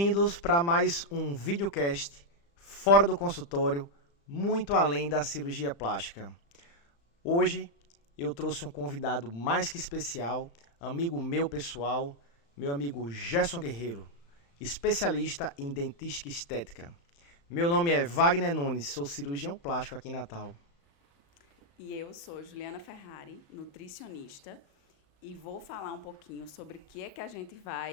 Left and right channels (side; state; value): right; late; 35 ms